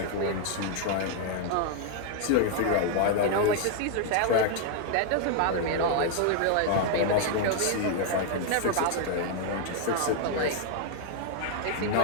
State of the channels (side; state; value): both; different; correlation 0.00